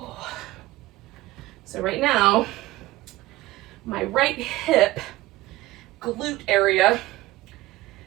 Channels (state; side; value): quieter; left; 17.7 dB